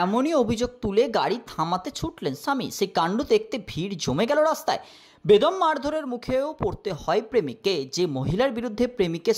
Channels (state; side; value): identical; both; correlation 1.00